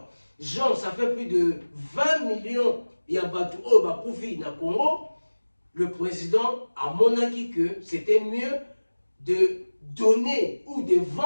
gens, ça fait plus de 20 millions Yabatu au Bakoufi na Congo. Le président a monarqué que c'était mieux de donner ou de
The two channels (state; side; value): inverted; both; correlation -1.00